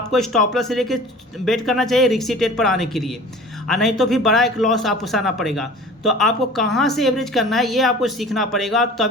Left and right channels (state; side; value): normal; both; correlation 0.42